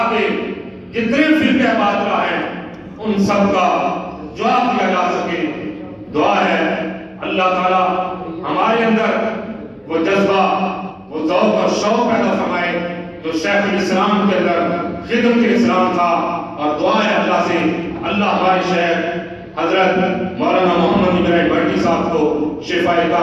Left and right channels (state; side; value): identical; both; correlation 1.00